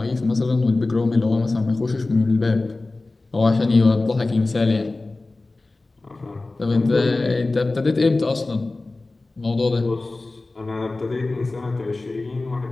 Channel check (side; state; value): right; quieter; 3.2 dB